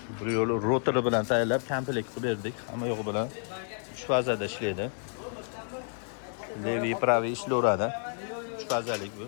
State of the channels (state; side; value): silent; right; 58 dB below the other